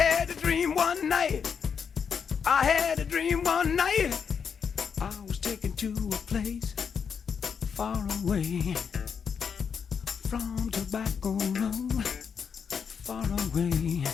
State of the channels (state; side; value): quieter; right; 6.6 dB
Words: a dream one night. I had a dream one night. I was taken to a place far away from Tobacco Road, far away